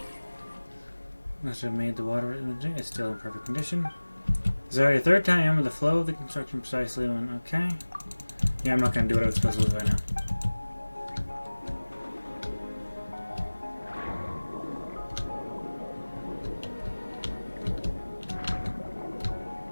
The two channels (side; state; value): both; inverted; correlation -1.00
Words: Must have made the water imaging. It's still in perfect condition. Is already the third time I remember the flow of the construction precisely when. Okay. Yeah, I'm not gonna do what I was supposed to do right now.